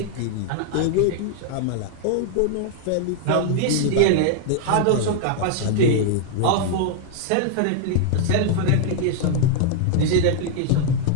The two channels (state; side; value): different; both; correlation 0.00